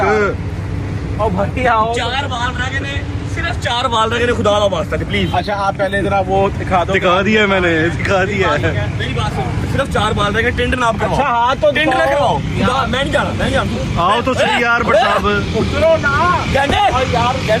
ओ भाई आओ। 4 बाल रह गए ने, सिर्फ 4 बाल रह गए ने, खुदा का वास्ता प्लीज। अच्छा आप पहले जरा वो दिखा दो। दिखा दिया मैंने, दिखा दिया। मेरी बात सुनो, सिर्फ 4 बाल रह गए, टिंड नाप करवाओ। अच्छा हाँ तो टिंड ना करवाओ। मैं नहीं जाना, मैं नहीं जाना। आओ तो सही यार भट्ट साहब। उतरो ना कहने यार,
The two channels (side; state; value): both; identical; correlation 1.00